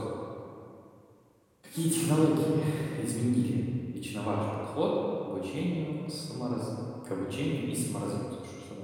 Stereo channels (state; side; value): identical; both; correlation 1.00